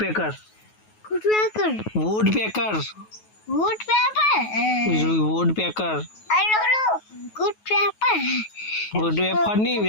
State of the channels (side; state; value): right; late; 9.3 ms